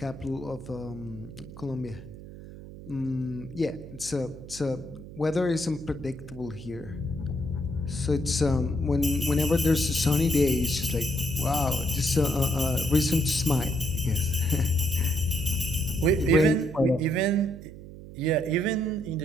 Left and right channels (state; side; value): noise; right; hum, 14 dB below the sound